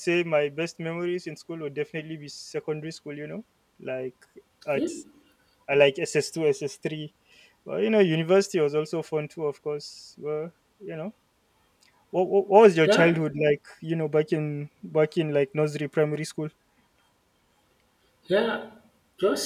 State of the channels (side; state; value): both; identical; correlation 1.00